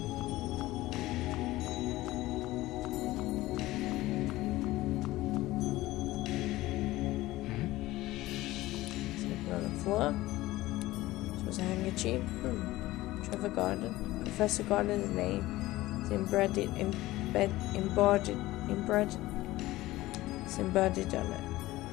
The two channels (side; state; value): right; quieter; 17.5 dB